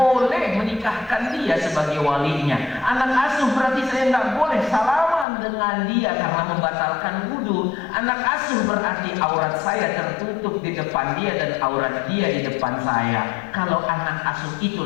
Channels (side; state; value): right; drops out; at 5.2 s